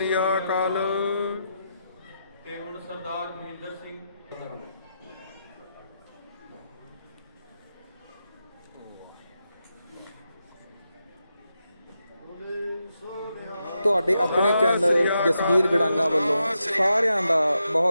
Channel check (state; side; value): inverted; both; correlation -0.85